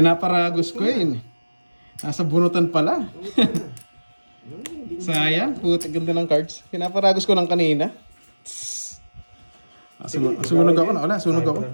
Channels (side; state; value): both; inverted; correlation -1.00